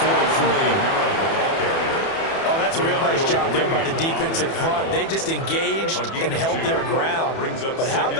43. That's a real nice job there by the defensive front. They just engaged and held their ground. But how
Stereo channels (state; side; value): late; right; 30 ms